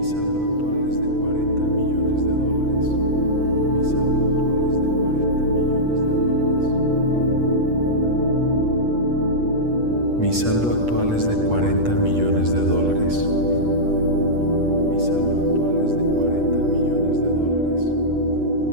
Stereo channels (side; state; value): left; late; 8.3 ms